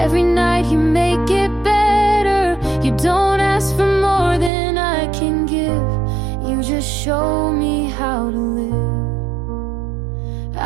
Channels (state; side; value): drops out; left; at 4.5 s